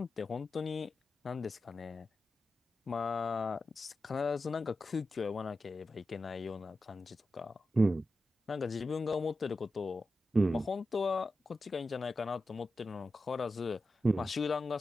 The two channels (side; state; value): both; normal; correlation 0.91